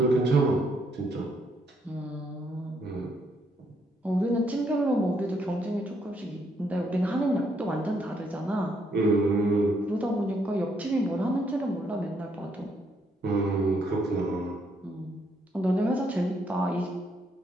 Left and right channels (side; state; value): both; normal; correlation 0.73